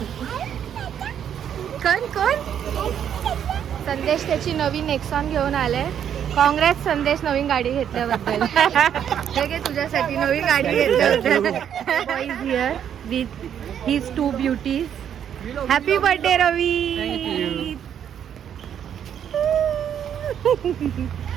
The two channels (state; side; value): quieter; left; 9.1 dB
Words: कोण? संदेश त्याची नवीन नेक्सॉन घेऊन आले. काँग्रेस संदेश, नवीन गाडी घेतल्याबद्दल. हे घे तुझ्यासाठी नवीन गाडी घेतल्याबद्दल. Is here with his 2 beauties. Happy birthday Ravi.